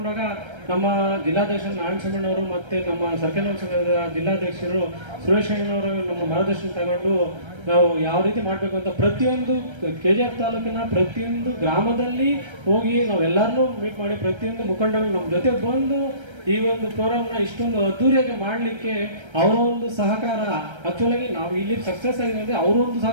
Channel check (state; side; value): late; left; 1.3 ms